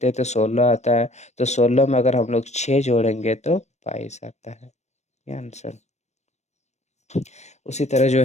हैं तो 16 आता है। तो 16 में अगर हम लोग 6 जोड़ेंगे तो 22 आता है। ये आंसर। उसी तरह जो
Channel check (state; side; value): late; right; 0.33 ms